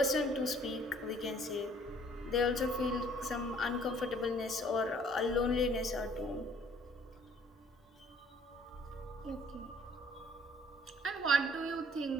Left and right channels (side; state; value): both; normal; correlation 0.58